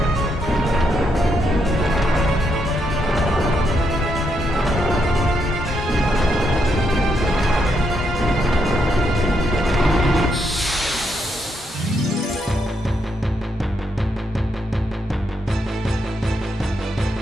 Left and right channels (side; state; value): both; normal; correlation 0.79